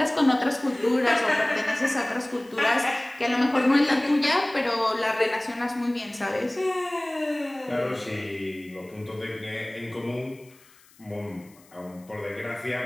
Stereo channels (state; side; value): noise; left; hiss, 28 dB below the sound